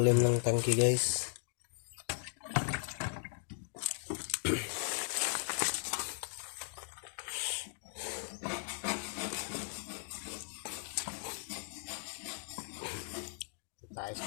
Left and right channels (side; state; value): right; silent; digital silence